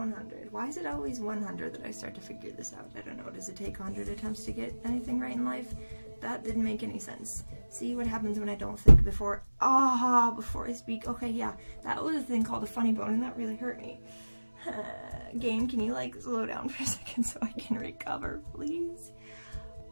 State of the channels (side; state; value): both; inverted; correlation -1.00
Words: Why is it always 100 that I start to figure this out? I don't know. Does it take 100 attempts to get anything right in life? That didn't make any sense. See what happens when I don't think before I speak. Okay, yeah, that was a thing called a funny bone, and that really hurt me. Game, can you like slow down for a second so I can recover, please?